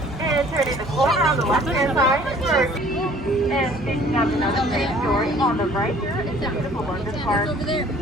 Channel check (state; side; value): normal; both; correlation 0.54